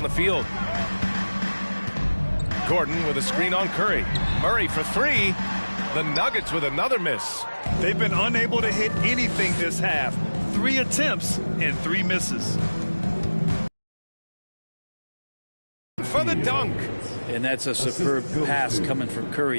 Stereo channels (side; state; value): both; inverted; correlation -1.00